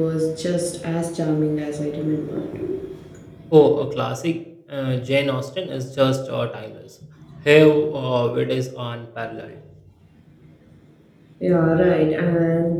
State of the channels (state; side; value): identical; both; correlation 1.00